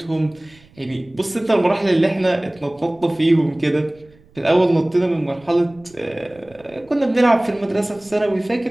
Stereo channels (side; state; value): right; noise; rumble, 28 dB below the sound